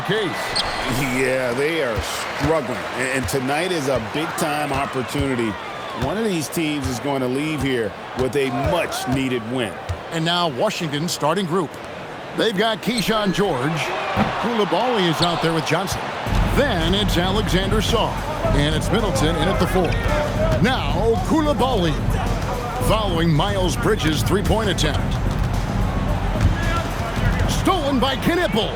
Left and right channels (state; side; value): identical; both; correlation 1.00